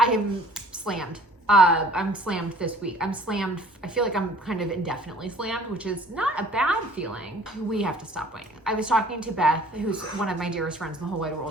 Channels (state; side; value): normal; both; correlation 0.53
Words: am slammed. I'm slammed this week. I'm slammed. I feel like I'm kind of indefinitely slammed, which is not a bad feeling. We have to stop waiting. I was talking to Beth, who's one of my dearest friends in the whole wide